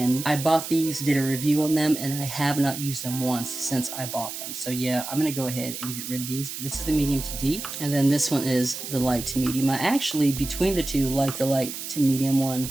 I bought these, did a review on them, and I have not used them once since I bought them. So yeah, I'm going to go ahead and get rid of these. But this is the medium to deep, and then this one is the light to medium. I actually, between the 2, like the light to medium one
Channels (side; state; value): right; noise; hiss, 8 dB below the sound